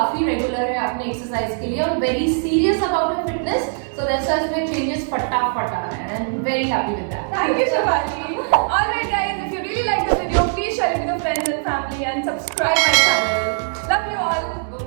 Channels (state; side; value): silent; left; digital silence